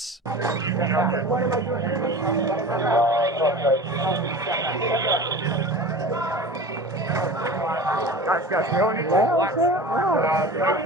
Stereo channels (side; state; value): both; normal; correlation 0.35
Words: Guys, we don't need to.